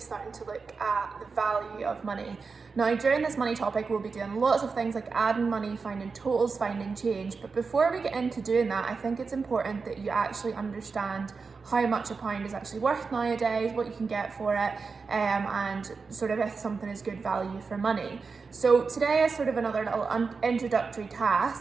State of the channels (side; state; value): left; quieter; 4.8 dB